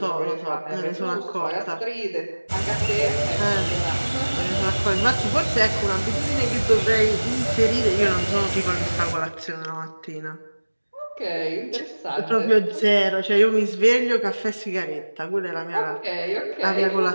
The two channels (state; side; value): inverted; both; correlation -1.00